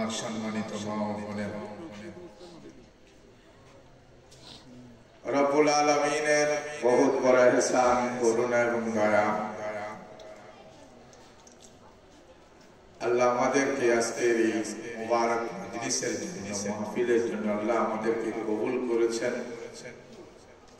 সম্মানিত মা ও বোনেরা রব্বুল আলামিনের বহুত বড় ইহসান করুণা এবং দয়া আল্লাহ আমাদেরকে আজকের এই মুবারক মজলিসের জন্য মাহফিলের জন্য আল্লাহ আমাদেরকে কবুল করেছেন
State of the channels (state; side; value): identical; both; correlation 1.00